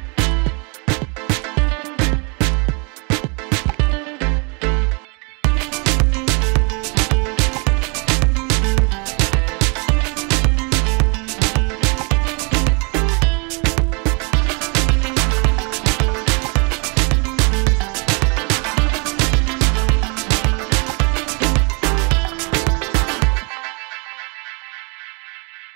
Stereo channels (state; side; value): quieter; left; 33.1 dB